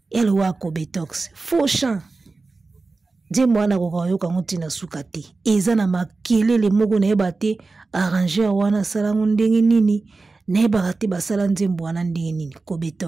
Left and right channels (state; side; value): quieter; left; 3.8 dB